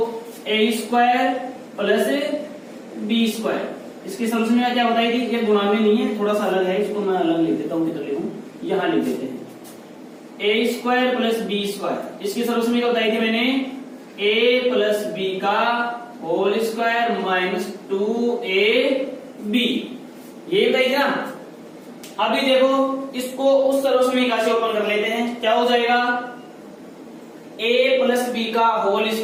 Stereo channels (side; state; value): both; identical; correlation 1.00